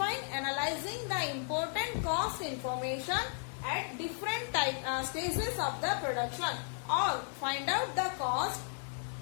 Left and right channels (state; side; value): silent; right; 55 dB below the other